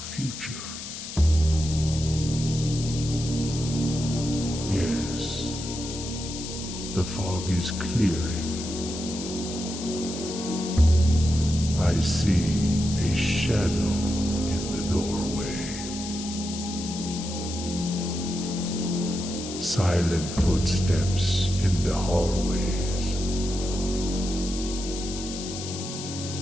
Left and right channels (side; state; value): left; noise; hiss, 9 dB below the sound